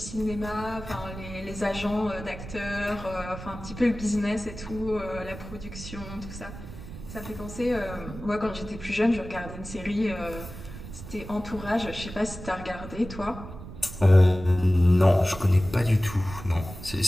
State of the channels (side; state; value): right; noise; rumble, 12 dB below the sound